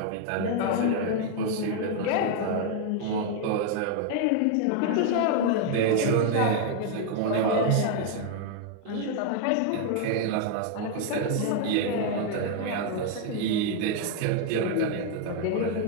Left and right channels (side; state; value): both; different; correlation 0.00